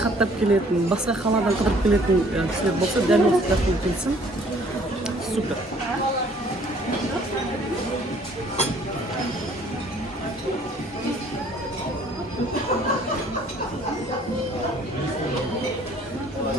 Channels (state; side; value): normal; both; correlation 0.58